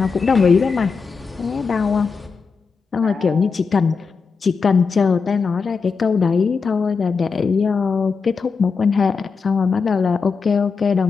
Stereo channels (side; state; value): right; quieter; 5.1 dB